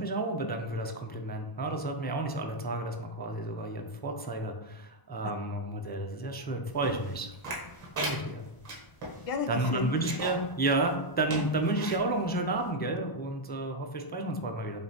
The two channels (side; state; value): right; late; 1.0 ms